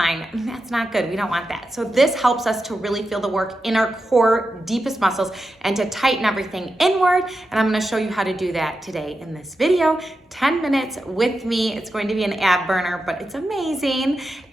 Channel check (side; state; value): both; normal; correlation 0.89